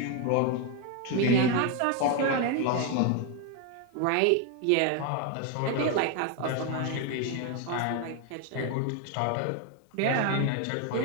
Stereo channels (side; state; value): both; different; correlation 0.01